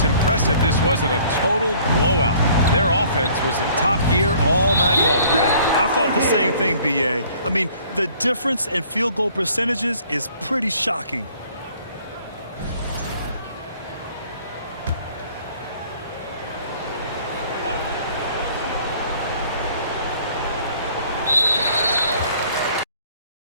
impressive this wasn't a total blowout. Their offense was in top gear all night long, Grant. I thought the same thing, B.A. I mean, the difference in field goal percentages is pretty shocking.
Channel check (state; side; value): inverted; both; correlation -0.56